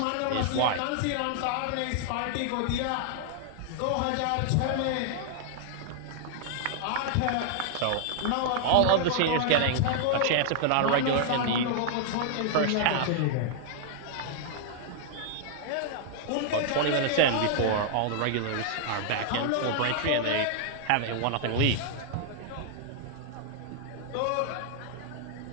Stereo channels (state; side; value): different; both; correlation -0.01